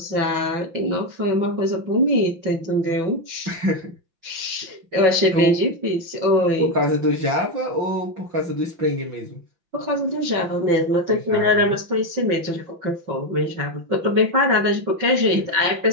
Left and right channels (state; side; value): late; left; 5.9 ms